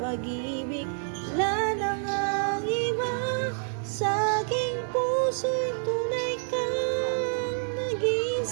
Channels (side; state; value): left; silent; digital silence